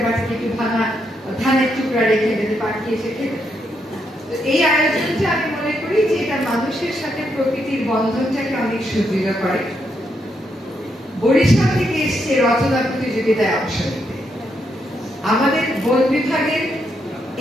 বাটিতে একটু ধানের টুকরা রেখে দিতে পাখি এসে খেতে। এই আয়োজনটা আমি মনে করি যে এটা মানুষের সাথে প্রকৃতির বন্ধনটাকে অনেক সুদৃঢ় করে। বরিশাল থেকে এসছে রচনা প্রতিযোগিতায় অংশ নিতে। আমাদের বন বিভাগের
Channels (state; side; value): normal; both; correlation 0.79